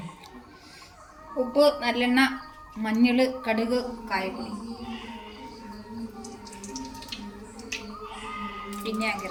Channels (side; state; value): both; identical; correlation 1.00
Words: ഉപ്പ്, നല്ലെണ്ണ, മഞ്ഞൾ, കടുക്, കായപ്പൊടി,